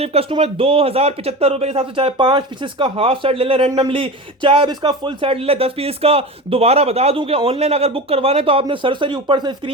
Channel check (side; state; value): both; normal; correlation 0.28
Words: कस्टमर 2075 रुपए के हिसाब से। चाहे 5 पीसेस का हाफ सेट ले ले रैंडमली, चाहे इसका फुल सेट ले ले 10 पीस का। दोबारा बता दूं कि ऑनलाइन अगर बुक करवाना है तो आपने सरसरी ऊपर से